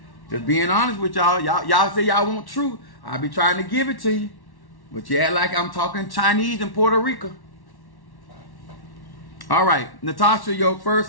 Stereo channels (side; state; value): right; late; 1.1 ms